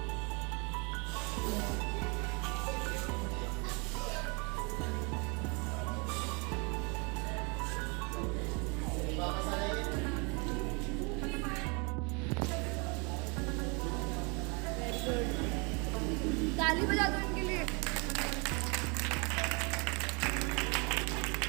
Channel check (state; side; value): quieter; left; 31.2 dB